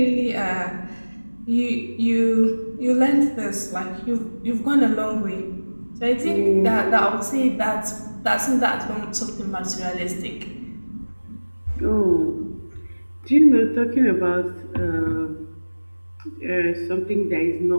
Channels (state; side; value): inverted; both; correlation -1.00